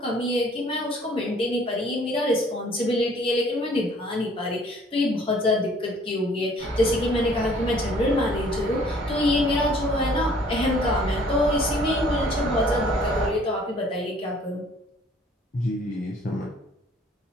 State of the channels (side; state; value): both; normal; correlation 0.57